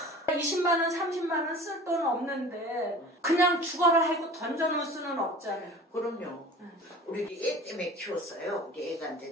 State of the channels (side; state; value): both; normal; correlation 0.41